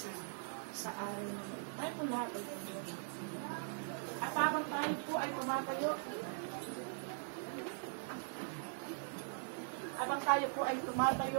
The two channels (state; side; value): silent; left; 50 dB below the other